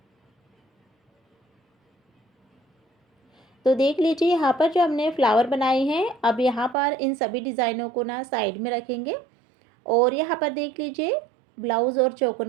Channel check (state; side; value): drops out; left; at 6.8 s